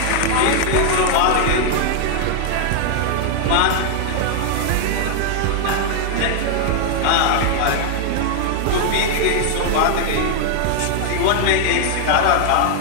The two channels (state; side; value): different; both; correlation 0.00